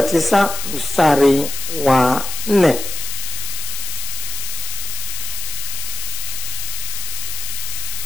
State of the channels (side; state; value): left; noise; hiss, 5 dB below the sound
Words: mstari wa 4.